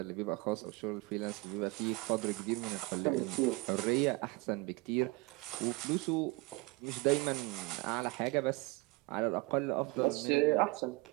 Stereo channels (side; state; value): left; quieter; 24.3 dB